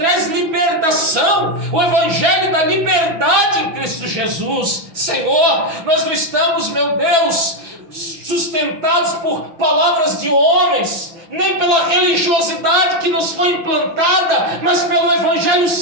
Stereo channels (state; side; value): late; left; 6.2 ms